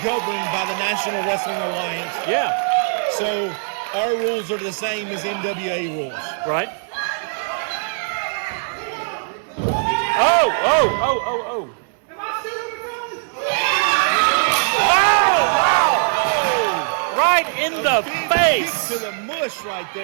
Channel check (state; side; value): silent; left; 65 dB below the other